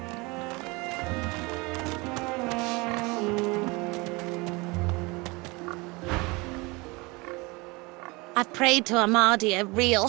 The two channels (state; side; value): quieter; left; 25.5 dB